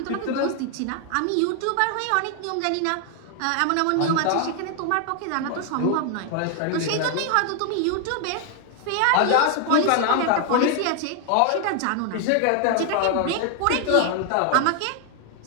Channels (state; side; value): different; both; correlation 0.00